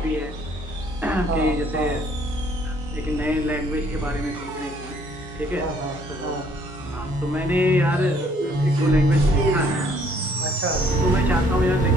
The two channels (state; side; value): normal; both; correlation 0.63